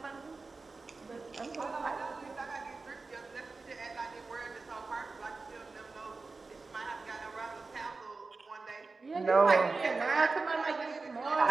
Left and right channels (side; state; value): left; quieter; 3.9 dB